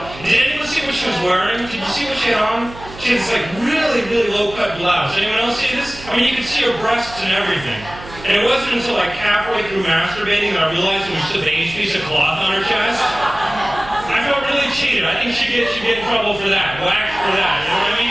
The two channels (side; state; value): right; noise; hum, 16 dB below the sound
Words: Did anyone see what she was wearing? Did you see what she had on? She had this like really, really low-cut blouse. Anyone else see this? I mean, you could see her breasts and everything. And it wasn't until like halfway through masturbating that I realized it was just a beige piece of cloth on her chest. I felt really cheated. I think she'd get in trouble for that. Whacked for that. You know what I